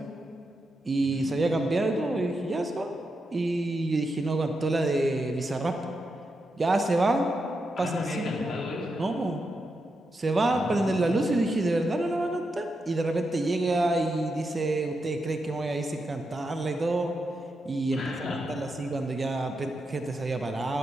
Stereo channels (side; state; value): both; normal; correlation 0.85